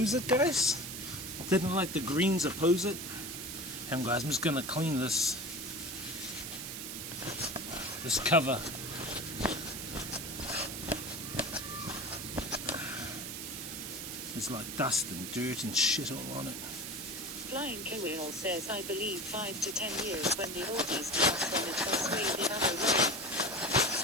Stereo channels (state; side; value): noise; right; hiss, 7 dB below the sound